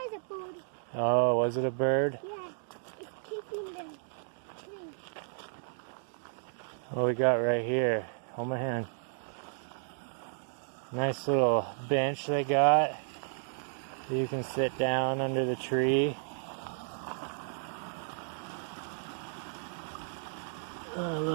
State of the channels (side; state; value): left; silent; digital silence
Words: was a bird. Oh, was it a bird? Yeah, it's keeping them. What we got right here? Hold my hand. Nice little bench they got. You can sit down under the tree. A